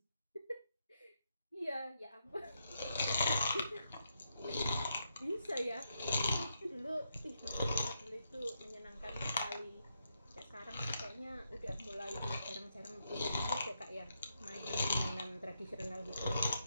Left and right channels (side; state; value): both; inverted; correlation -0.82